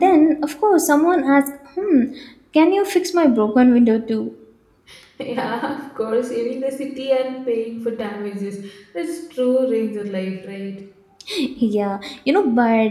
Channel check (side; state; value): both; identical; correlation 1.00